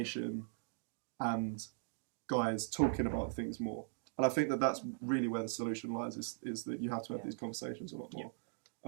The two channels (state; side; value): silent; left; digital silence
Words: and guys talking about things more. And I think that that's really where the solution lies, is that you have to have these conversations a lot